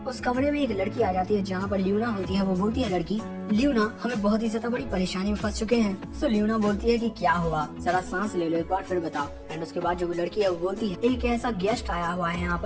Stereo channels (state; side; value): identical; both; correlation 1.00